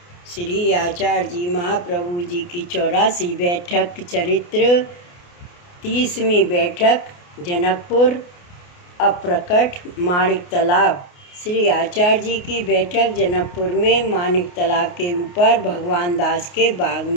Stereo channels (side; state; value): right; late; 28 ms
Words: श्री आचार्य जी महाप्रभु जी की 84वीं बैठक चरित्र 30वीं बैठक जनकपुर अप्रकट माणिक तालाब। श्री आचार्य जी की बैठक जनकपुर में माणिक तालाब के ऊपर भगवान दास के बाग